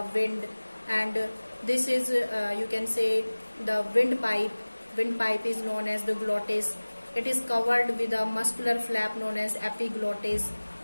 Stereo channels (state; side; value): inverted; both; correlation -1.00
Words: wind. And this is you can say the windpipe. Windpipe is known as the glottis. It is covered with a muscular flap known as epiglottis.